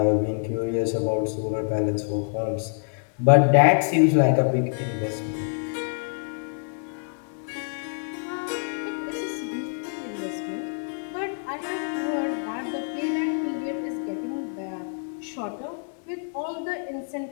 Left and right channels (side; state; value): right; silent; 61 dB below the other